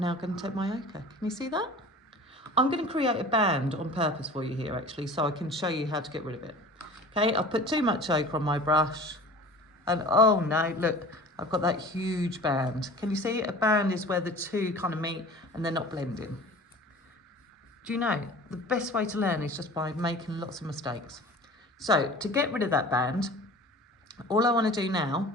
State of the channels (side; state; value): both; normal; correlation 0.41